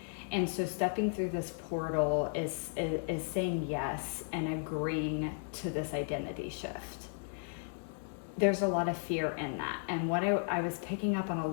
And so stepping through this portal is saying yes and agreeing to this identity shift. There's a lot of fear in that. And what I was picking up on a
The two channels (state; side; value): silent; right; digital silence